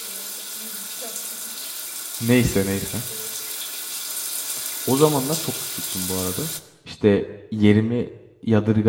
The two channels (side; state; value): both; identical; correlation 1.00